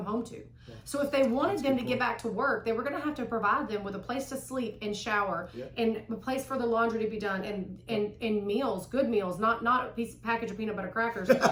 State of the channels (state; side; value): identical; both; correlation 1.00